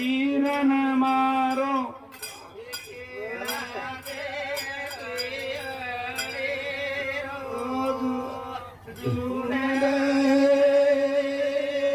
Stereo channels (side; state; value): both; identical; correlation 1.00